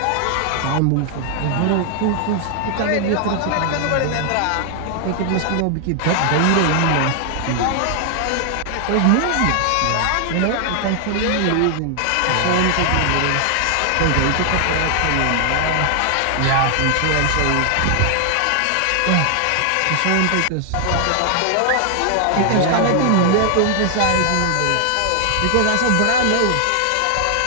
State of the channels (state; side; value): different; both; correlation 0.00